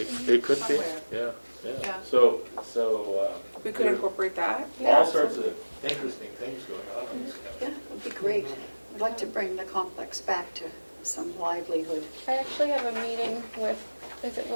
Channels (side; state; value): both; inverted; correlation -1.00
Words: could be, Somewhere. yeah. Yeah. So We could incorporate that. all sorts of interesting things going on in this Yeah, county. it'd be great. I'd like to bring the complex back to some livelihood. I actually have a meeting with, is it